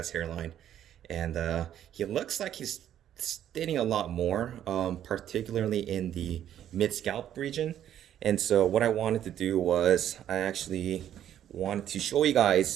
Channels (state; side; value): quieter; left; 10.8 dB